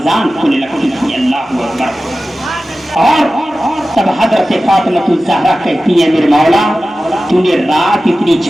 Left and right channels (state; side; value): normal; both; correlation 0.95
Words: کھلنے لگتی تھی۔ اللہ اکبر۔ اور تب حضرت فاطمہ الزہرا کہتی ہے، میرے مولا تو نے رات اتنی